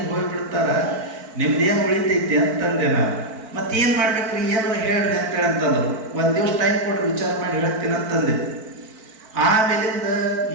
ಹೋಗ್ಬಿಡ್ತಾರ, ನಿಮ್ದೇನು ಉಳಿತೈತಿ ಅಂತಂದೆ ನಾನು. ಮತ್ತೇನು ಮಾಡ್ಬೇಕ್ರಿ, ಏನಾರು ಹೇಳ್ರಿ ಅಂತ ಹೇಳಂತಂದ್ರು. ಒಂದು ದಿವಸ ಟೈಮ್ ಕೊಡ್ರಿ, ವಿಚಾರ ಮಾಡಿ ಹೇಳ್ತೀನಿ ಅಂತಂದೆ. ಆಮೇಲಿಂದ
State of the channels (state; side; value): late; left; 4.5 ms